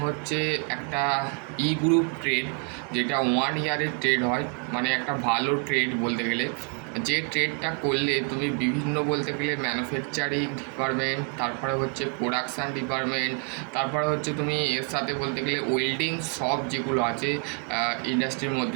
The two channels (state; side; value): quieter; left; 36.7 dB